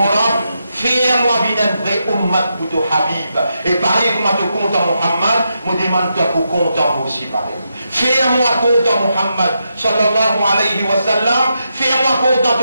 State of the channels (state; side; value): inverted; both; correlation -0.84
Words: fais-moi bien un vrai ummat pour ton Habib. Et pareil, comme tu comptes en Muhammad, me demande-toi pour compter moi aussi pareil. Fais-moi compte en Muhammad sallallahu alayhi wa sallam. Fais-moi compte en